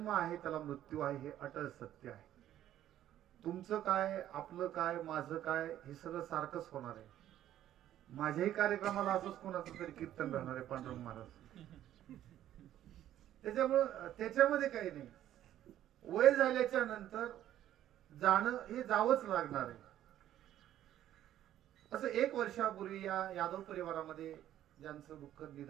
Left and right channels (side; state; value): left; quieter; 12.1 dB